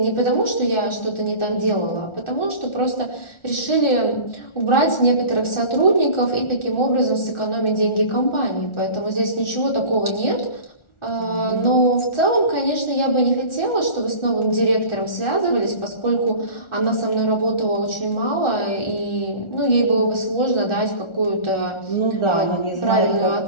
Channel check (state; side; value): late; right; 1.4 ms